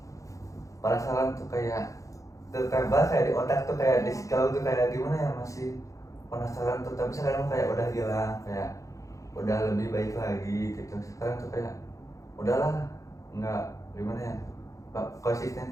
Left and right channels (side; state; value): right; late; 0.16 ms